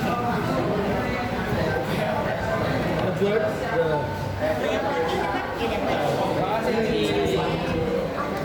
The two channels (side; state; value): both; identical; correlation 1.00